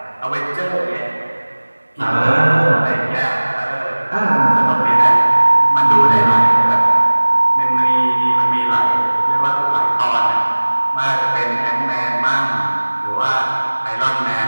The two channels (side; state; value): both; inverted; correlation -1.00